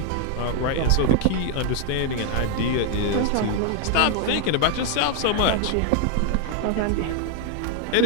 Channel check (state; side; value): different; both; correlation 0.00